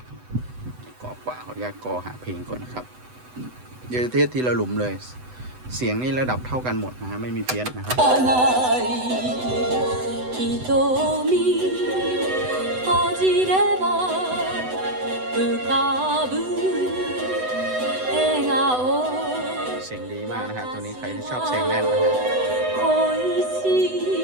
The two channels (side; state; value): left; late; 8.0 ms